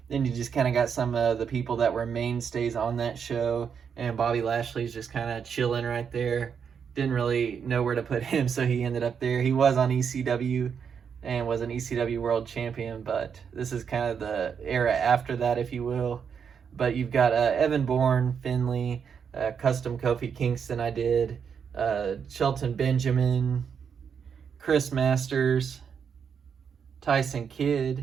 Then you just kind of got some of the people that were mainstays on that show. And Bobby Lashley's just kind of chilling right there. Didn't really know where to put him, so he ended up there. He was on ECW and was an ECW world champion, but this is kind of the era after that, if you will. But you've got Evan Bourne, Finley, custom Kofi Kingston I did, Shelton Benjamin, Chris Masters, Tyson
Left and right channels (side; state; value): left; quieter; 7.0 dB